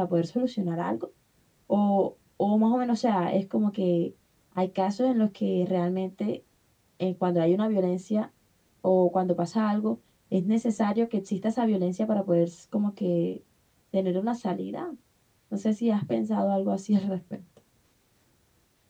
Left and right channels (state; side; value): identical; both; correlation 1.00